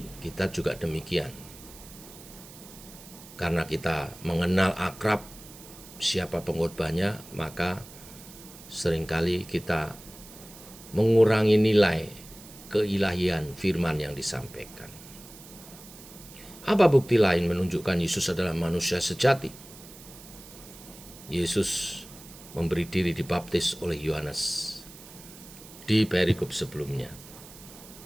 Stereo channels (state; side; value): noise; right; hiss, 18 dB below the sound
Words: kita juga demikian. Karena kita mengenal akrab siapa pengkhotbahnya, maka seringkali kita mengurangi nilai keilahian firman yang disampaikan. Apa bukti lain menunjukkan Yesus adalah manusia sejati? Yesus memberi diri dibaptis oleh Yohanes di perikop sebelumnya.